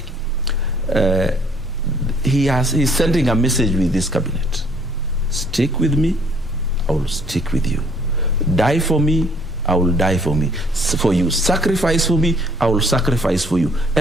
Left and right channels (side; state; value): both; normal; correlation 0.61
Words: he's sending a message with this cabinet. Stick with me, I will stick with you. Die for me, I will die for you. Sacrifice for me, I will sacrifice for you.